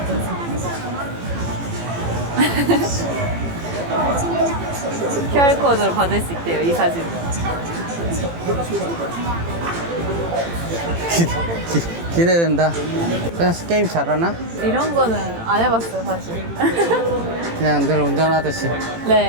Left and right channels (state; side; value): late; left; 18 ms